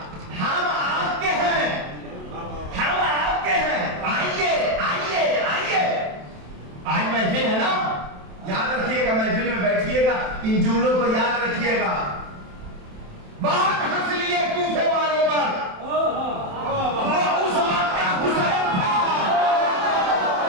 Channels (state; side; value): late; left; 27 ms